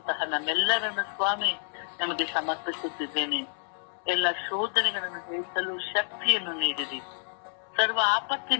ನಮ್ಮೆಲ್ಲರನ್ನು ಸ್ವಾಮಿ ನಮಗೆ ಸಮರ್ಪಿಸುತ್ತಿದ್ದೇನೆ. ಎಲ್ಲ ಶೋಧನೆಗಳನ್ನು ಜಯಿಸಲು ಶಕ್ತಿಯನ್ನು ನೀಡಿರಿ. ಸರ್ವ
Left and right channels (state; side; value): silent; right; 59 dB below the other